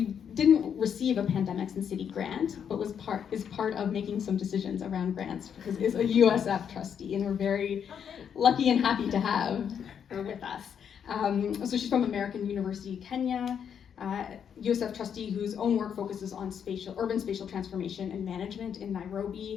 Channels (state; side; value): quieter; right; 8.0 dB